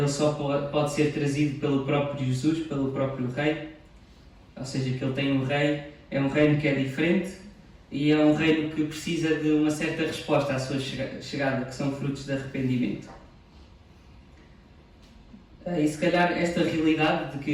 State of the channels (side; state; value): both; identical; correlation 1.00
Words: só pode ser trazido pelo próprio Jesus, pelo próprio Rei. Ou seja, que ele tem um rei, é um reino que é diferente e é um reino que precisa de uma certa resposta à sua chegada, que são frutos de arrependimento. E se calhar esta realidade de